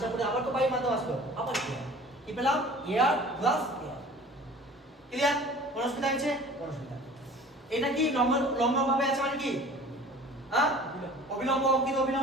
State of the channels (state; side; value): normal; both; correlation 0.45